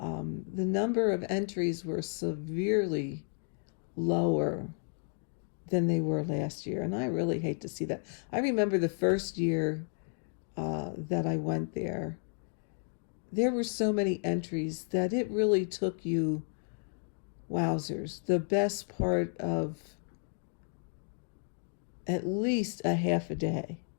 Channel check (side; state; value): right; silent; 56 dB below the other